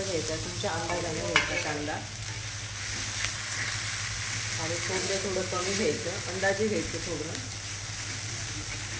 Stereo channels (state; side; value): identical; both; correlation 1.00